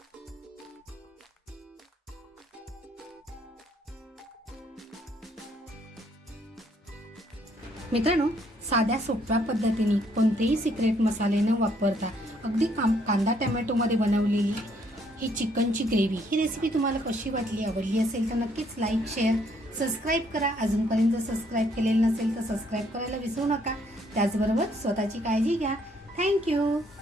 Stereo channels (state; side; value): normal; both; correlation 0.68